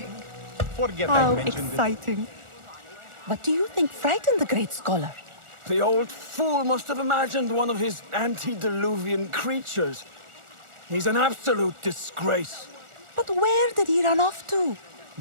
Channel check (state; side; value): late; left; 1.4 ms